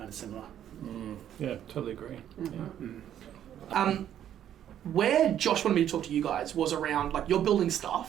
of similar. Yeah, totally agree. Mm-hmm. Yeah. Where Josh wanted me to talk to you guys was around, like, you're building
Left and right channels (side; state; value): left; quieter; 10.5 dB